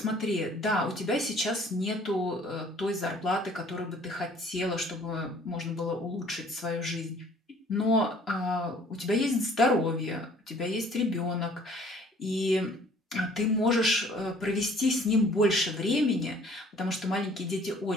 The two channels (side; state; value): both; normal; correlation 0.55